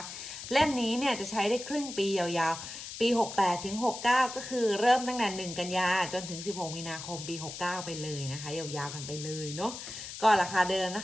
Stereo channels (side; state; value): left; noise; hiss, 10 dB below the sound